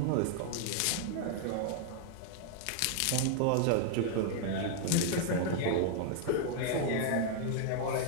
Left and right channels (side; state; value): both; different; correlation 0.00